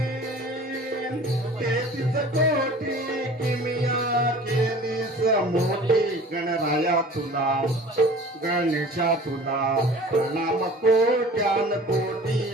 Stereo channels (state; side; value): normal; both; correlation 0.44